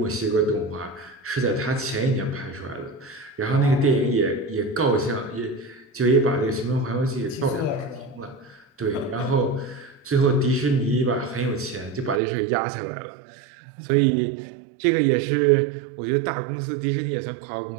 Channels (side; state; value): left; drops out; at 12.2 s